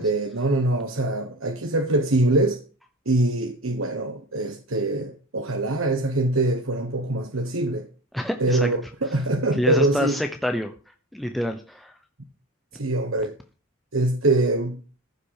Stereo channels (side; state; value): both; normal; correlation 0.29